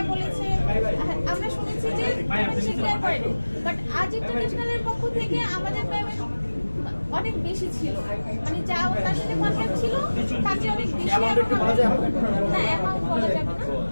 বলেছে, আমরা শুনেছি যে পেমেন্ট সে ক্লিয়ার করে নাই। বাট আজ ইন্টারন্যাশনালের পক্ষ থেকে আমাদের পেমেন্ট অনেক বেশি ছিল, মানে যা তার সাথে কন্ট্রাক্ট ছিল তার চেয়ে অনেক বেশি। না, অ্যামাউন্ট বলা যাবে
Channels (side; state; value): both; inverted; correlation -1.00